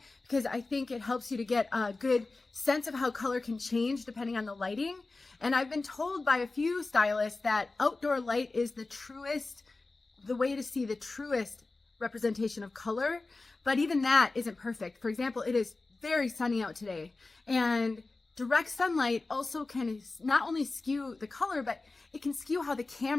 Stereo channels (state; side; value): quieter; right; 3.5 dB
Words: because I think it helps you to get a good sense of how color can change depending on the lighting. And I've been told by a few stylists that outdoor light is the way to see the truest representation of color, but even that isn't perfect. For example, it is very sunny out today, and direct sunlight also can not only skew the color, but it can skew how the